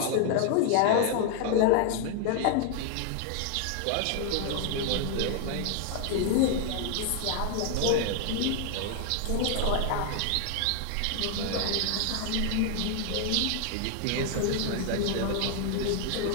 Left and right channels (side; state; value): both; different; correlation 0.00